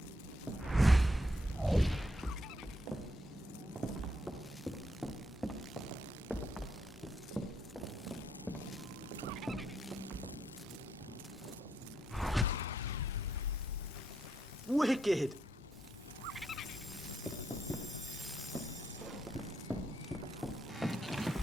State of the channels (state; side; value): normal; both; correlation 0.78